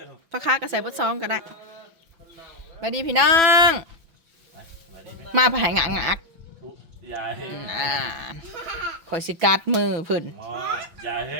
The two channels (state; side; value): late; left; 6.0 ms